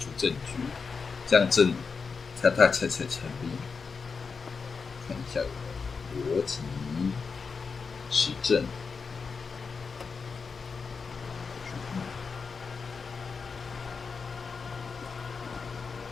证据，这样证他才成立。看一下逻辑实证。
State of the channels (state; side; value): quieter; right; 5.1 dB